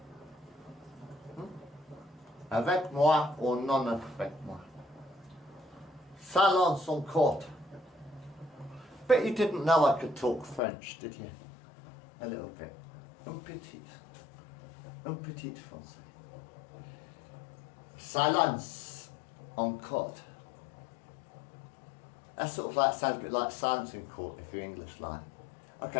Avec moi ou non avec moi. Salon son court. But you didn't know I could talk French, did you? A little bit. Un petit. Un petit français. Silence en court. That sort of like sounds a bit like silence in court if you're English like.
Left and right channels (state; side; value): drops out; right; at 10.6 s